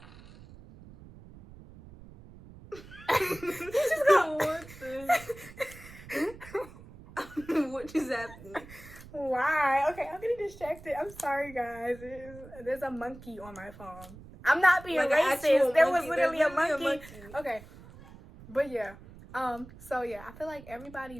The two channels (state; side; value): noise; right; rumble, 18 dB below the sound